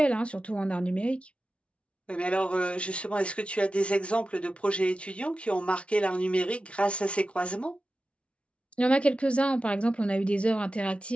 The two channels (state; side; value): late; right; 0.060 ms